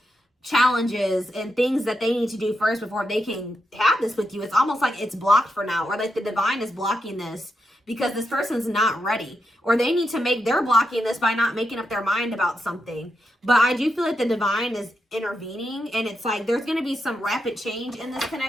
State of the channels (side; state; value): both; normal; correlation 0.85